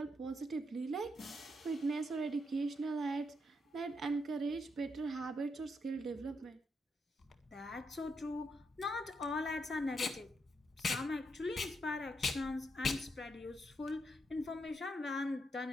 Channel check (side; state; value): both; normal; correlation 0.80